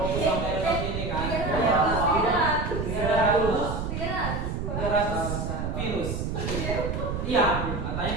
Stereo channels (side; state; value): right; noise; rumble, 3 dB below the sound